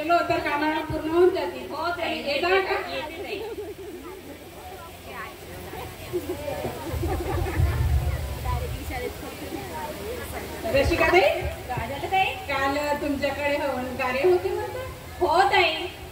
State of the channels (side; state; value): both; identical; correlation 1.00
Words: तर कामाला पूर्ण होऊन जातील. हो ताई, येता का? रसिका ताई, काय झालं ताई? काल तुमच्याकडे हवन कार्य होते म्हणतात. हो ताई.